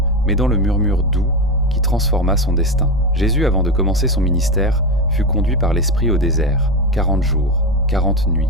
mais dans le murmure doux qui transforma son destin. Jésus, avant de commencer son ministère, fut conduit par l'Esprit au désert, 40 jours, 40 nuits.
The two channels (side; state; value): both; normal; correlation 0.15